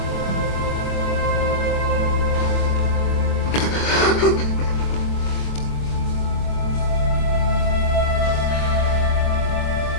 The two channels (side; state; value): right; late; 23 ms